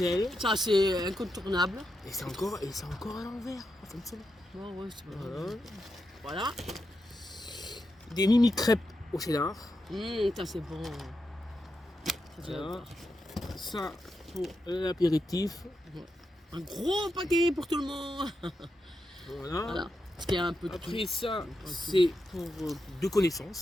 Ça, c'est incontournable. Et c'est encore à l'envers. Comme ça. Ouais, ouais, c'est pas Voilà. Voilà. Des mini crêpes au cheddar. Ça, c'est bon. Voilà. Ça pour l'apéritif. Un gros paquet pour tout le monde. Voilà. Voilà. Parce qu'il y a un peu de tout. Après ça, c'est pour 2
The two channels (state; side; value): normal; both; correlation 0.86